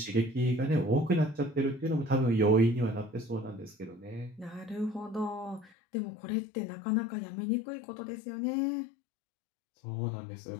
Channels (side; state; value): right; drops out; at 5.7 s